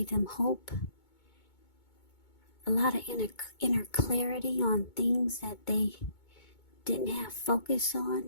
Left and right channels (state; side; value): late; right; 2.2 ms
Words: them hope. A lot of inner clarity on things that they didn't have focus